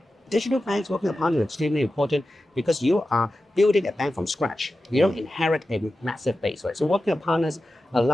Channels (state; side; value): normal; both; correlation 0.93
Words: Digital banks working with partners is extremely important because you are building a bank from scratch. You don't inherit a massive base, right? So working with partners